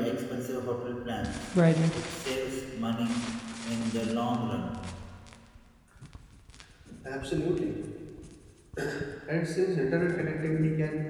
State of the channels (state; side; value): identical; both; correlation 1.00